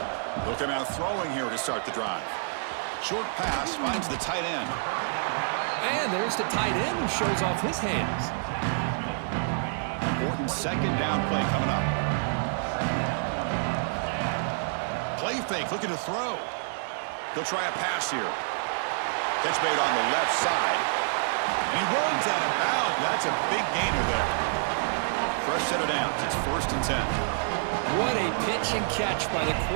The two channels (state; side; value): silent; left; 59 dB below the other